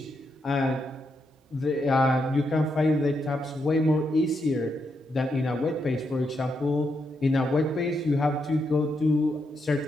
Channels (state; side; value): normal; both; correlation 0.81